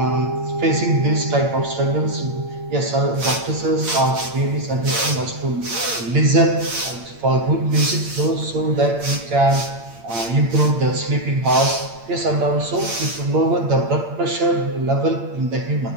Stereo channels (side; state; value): left; late; 8.7 ms